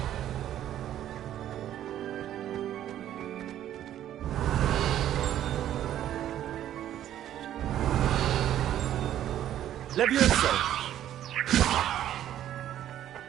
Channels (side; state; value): left; quieter; 11.6 dB